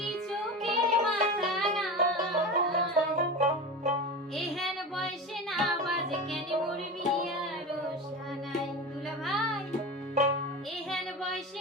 চোখের মাথা নাই? এহেন বয়সে না বাজ কেন মরবি আর সানাই? দুলা ভাই, এহেন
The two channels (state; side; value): normal; both; correlation 0.27